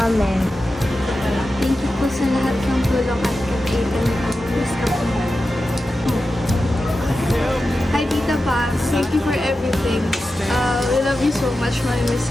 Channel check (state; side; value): normal; both; correlation 0.92